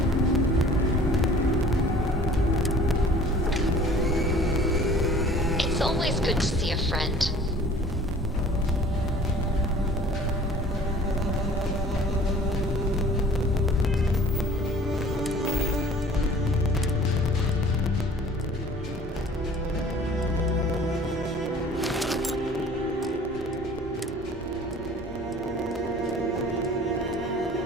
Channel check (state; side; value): normal; both; correlation 0.48